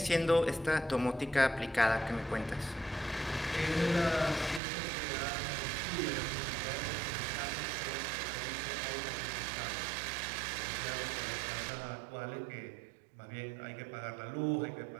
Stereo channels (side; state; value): left; drops out; at 4.6 s